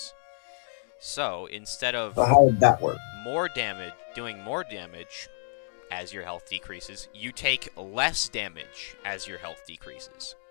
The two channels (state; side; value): silent; right; digital silence